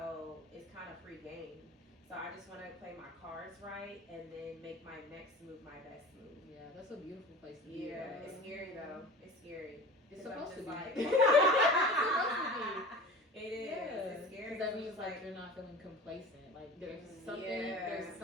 it's kind of free game. So I just want to play my cards right and then make my next move my best move. Yeah, that's a beautiful place to be. Yeah, it's scary though. It's scary. It's supposed to be. Like, it's supposed to be. It is. Yeah. It's scary. Because that means like you're not feeling complacent. Like there's something, there's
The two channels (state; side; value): normal; both; correlation 0.37